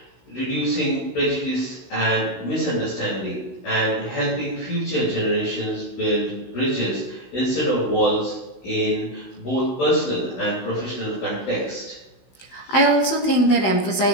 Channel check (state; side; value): late; right; 16 ms